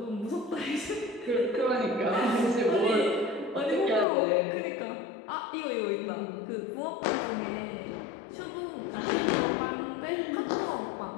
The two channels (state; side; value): drops out; right; at 4.0 s